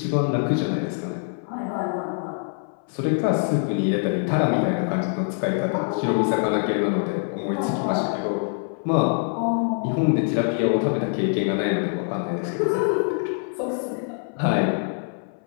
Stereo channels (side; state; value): right; silent; 58 dB below the other